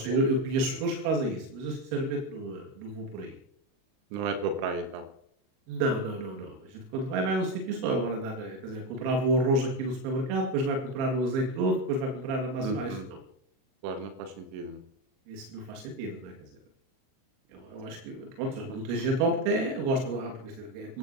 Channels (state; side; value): late; left; 37 ms